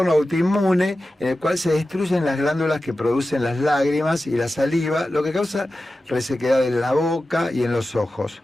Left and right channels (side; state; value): both; normal; correlation 0.94